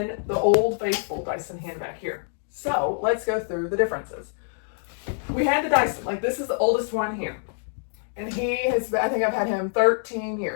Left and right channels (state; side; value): silent; right; digital silence